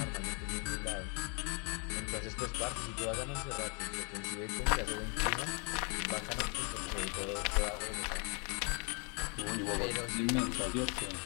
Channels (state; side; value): quieter; right; 35.7 dB